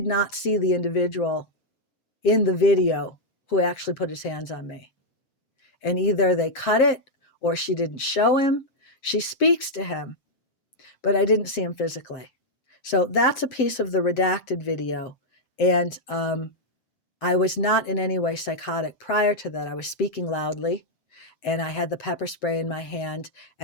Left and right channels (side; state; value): right; late; 7.5 ms